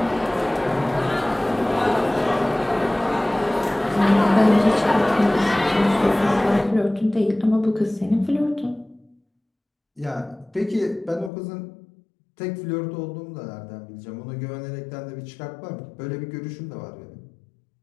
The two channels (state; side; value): drops out; right; at 11.3 s